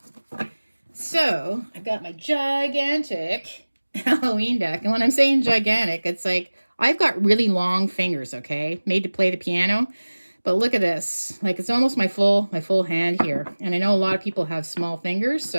So I've got my gigantic Halloween deck. And when I'm saying gigantic, it's like I've got really long fingers, okay? Made to play the piano. But look at this. Like it's almost my full hand here. And I know a lot of people have small fingers,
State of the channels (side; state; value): both; inverted; correlation -1.00